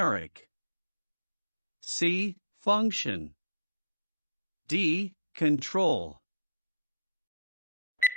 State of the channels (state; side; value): inverted; both; correlation -0.81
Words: C. Function. D. Control.